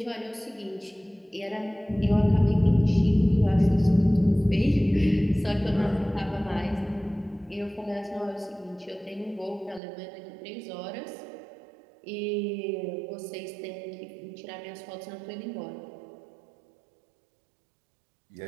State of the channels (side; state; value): left; drops out; at 9.8 s